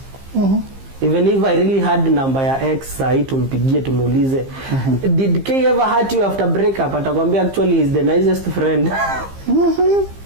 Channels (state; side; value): late; left; 15 ms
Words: Even if I really had number ya ex, sahi tumpigie tumuulize, did K ever hurt you after breakup? Atakwambia actually he's the nicest friend.